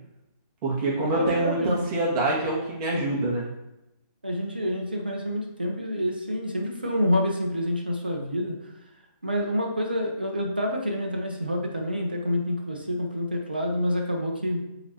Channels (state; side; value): inverted; both; correlation -0.69